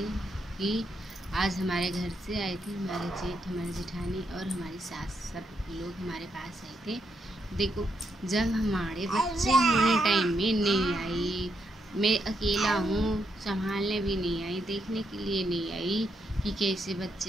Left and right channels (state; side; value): normal; both; correlation 0.79